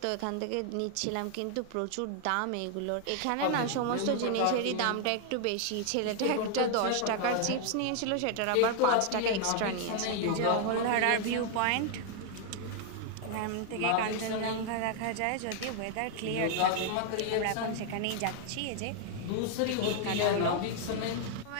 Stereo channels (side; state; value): both; different; correlation 0.00